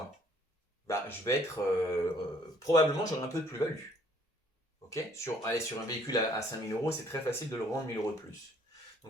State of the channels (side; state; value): both; normal; correlation 0.61